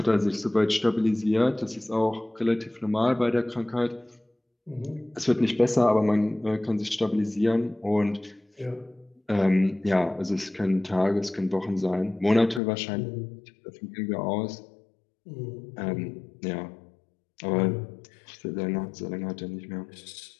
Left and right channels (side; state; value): right; drops out; at 12.6 s